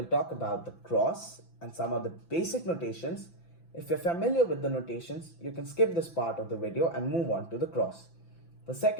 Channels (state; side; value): late; right; 5.9 ms